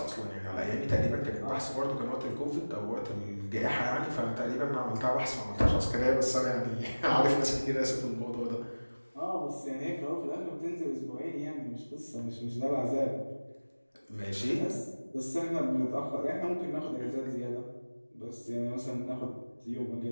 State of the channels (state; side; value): inverted; both; correlation -1.00